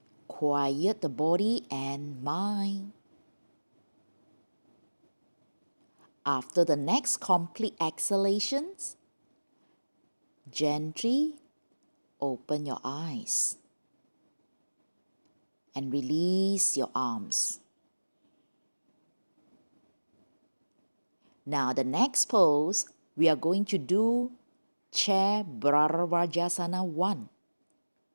Quiet the body and mind. After the next complete exhalations, gently open your eyes and release your arms. Now the next pose, we are going to do Chair Bharavajasana 1.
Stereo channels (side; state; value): both; inverted; correlation -1.00